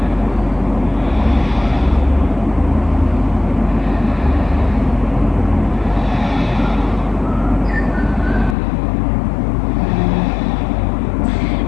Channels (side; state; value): right; drops out; at 8.6 s